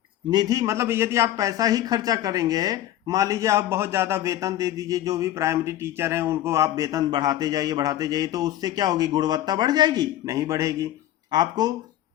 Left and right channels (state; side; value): quieter; right; 13.1 dB